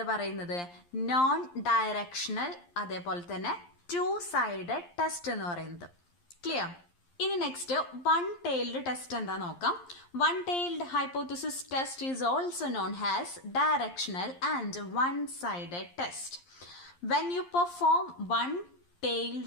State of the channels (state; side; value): late; right; 11 ms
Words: പറയുന്നത്? നോൺ ഡയറക്ഷണൽ, അതേപോലെ തന്നെ 2 സൈഡഡ് ടെസ്റ്റ് എന്ന് പറയുന്നത്. ക്ലിയർ? ഇനി നെക്സ്റ്റ് വൺ ടൈൽഡ് ടെസ്റ്റ് എന്താ നോക്കാം. One tailed hypothesis test is also known as directional and one sided test. When you perform